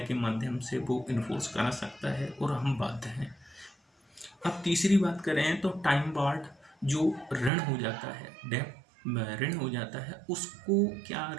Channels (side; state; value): left; drops out; at 7.5 s